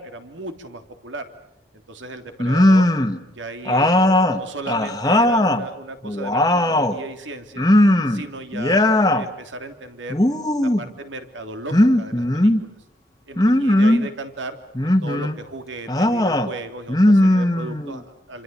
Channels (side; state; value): both; normal; correlation 0.73